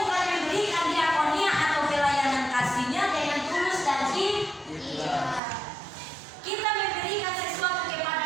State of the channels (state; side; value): drops out; left; at 5.4 s